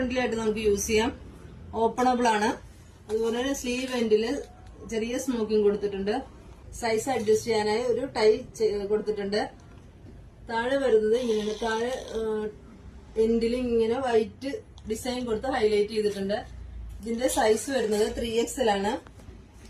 ആയിട്ട് നമുക്ക് യൂസ് ചെയ്യാം. ഓപ്പണബിൾ ആണ്. അതുപോലെ തന്നെ സ്ലീവ് എൻഡില് ചെറിയ സ്മോക്കിംഗ് കൊടുത്തിട്ടുണ്ട്. സൈസ് അഡ്ജസ്റ്റ് ചെയ്യാനായി ഒരു ടൈ കൊടുത്തിട്ടുണ്ട്. താഴെ വരുന്നത് ഇങ്ങനെ താഴെ എൻഡിൽ ഇങ്ങനെ വൈറ്റ് ഡിസൈൻ കൊടുത്ത് ഹൈലൈറ്റ് ചെയ്തിട്ടുണ്ട്. ഇതിന്റെ സൈസ് വരുന്നത് 3XL ആണ്.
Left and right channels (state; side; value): identical; both; correlation 1.00